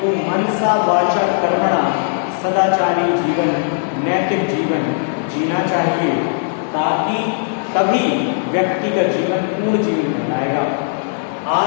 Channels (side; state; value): right; silent; digital silence